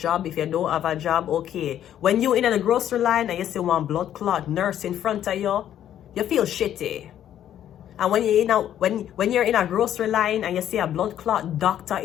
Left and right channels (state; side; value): quieter; right; 10.9 dB